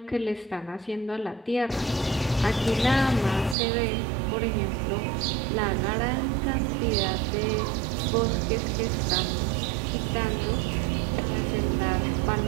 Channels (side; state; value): left; drops out; at 3.6 s